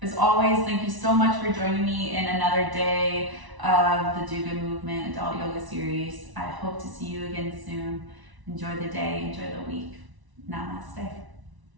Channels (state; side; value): late; left; 1.0 ms